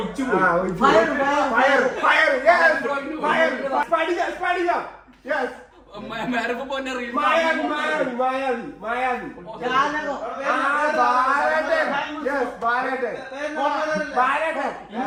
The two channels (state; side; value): identical; both; correlation 1.00